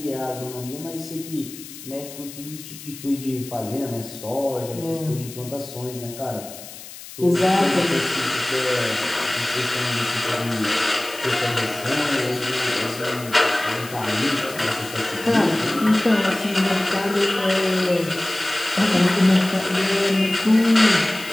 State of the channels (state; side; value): noise; left; hiss, 15 dB below the sound